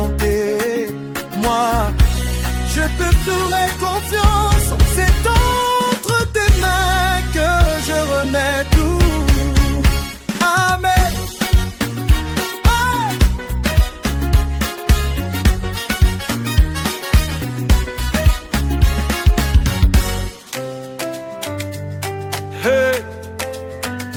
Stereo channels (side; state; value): both; identical; correlation 1.00